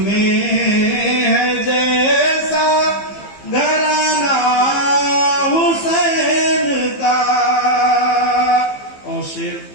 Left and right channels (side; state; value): right; late; 15 ms